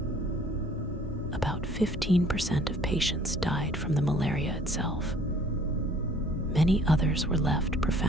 About 15% of patients died from the malaria itself. Many others were left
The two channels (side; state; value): both; normal; correlation 0.56